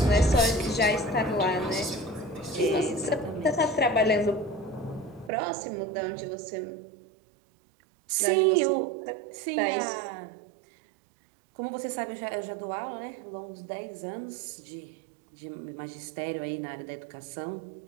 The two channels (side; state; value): left; drops out; at 5.3 s